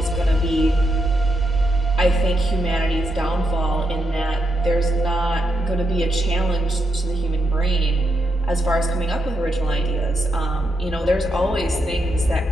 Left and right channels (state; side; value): normal; both; correlation 0.82